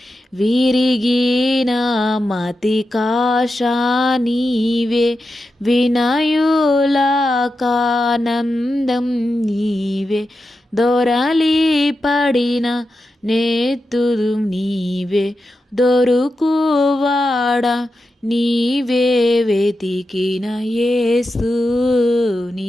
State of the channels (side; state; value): both; normal; correlation 0.90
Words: విరిగిన మతికాశ నీవే, వినయులకానందం నీవే, దొరలి పడిన నేతురు నీవే, దొరుకువాడ నీవే వెతికిన. యేసు